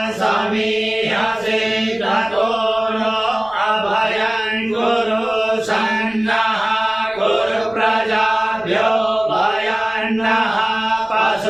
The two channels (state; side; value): noise; left; rumble, 29 dB below the sound